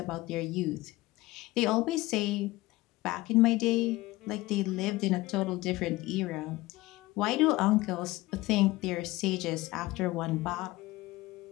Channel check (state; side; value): quieter; right; 19.4 dB